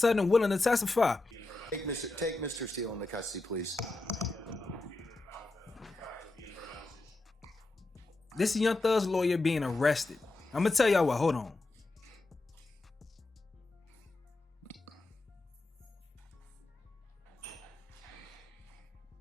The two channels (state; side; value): quieter; right; 3.1 dB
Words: willing to testify? Take Mr. Steele into custody, please. This is Young Thug's lawyer being arrested. I'm gonna tell y'all what. Hold on.